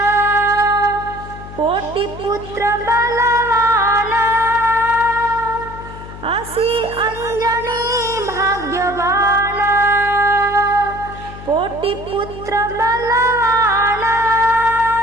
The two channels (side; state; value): left; noise; hum, 14 dB below the sound